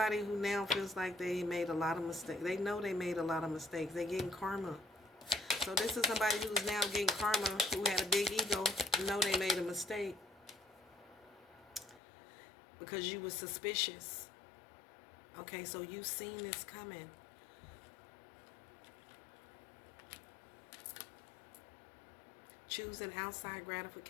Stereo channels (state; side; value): drops out; right; at 12.0 s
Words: who now feels like they made a lot of mistakes. They know they made a lot of mistakes. They're getting karma. So this is somebody who's now getting karma, who had a big ego, know they made a mistake. Because you were suspicious. Okay, so you've seen this coming. Choosing outside